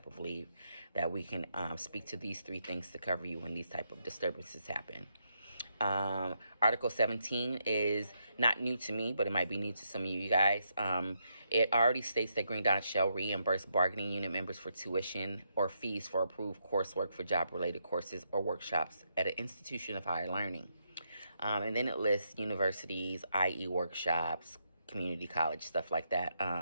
of leave, that we can speak to these 3 things to cover you when these type of disturbances happen. Article 17 is not new to me, but it might be new to some of you guys. It already states that Green Dot shall reimburse bargaining unit members for tuition or fees for approved coursework for job-related courses or workshops at an institution of higher learning. And then it lists universities, i.e. workshops, community college, stuff like that.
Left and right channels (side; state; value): both; inverted; correlation -0.80